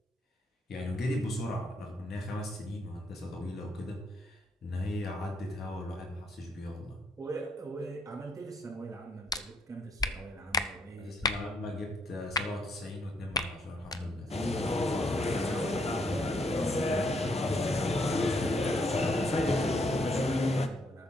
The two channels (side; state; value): both; normal; correlation 0.71